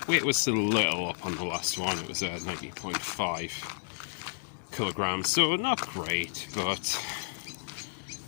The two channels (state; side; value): silent; right; digital silence